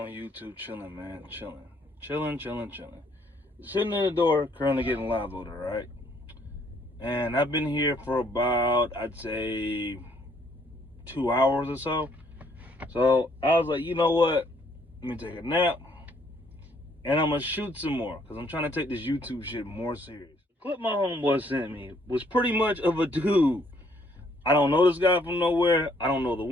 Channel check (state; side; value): normal; both; correlation 0.66